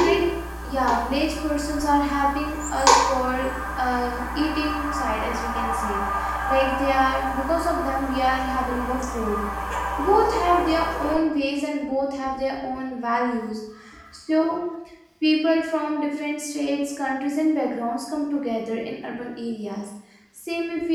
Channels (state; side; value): identical; both; correlation 1.00